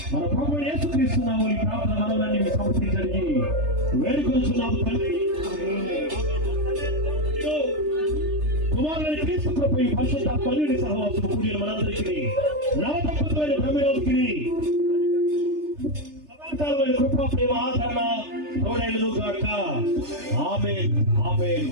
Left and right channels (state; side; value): late; left; 3.3 ms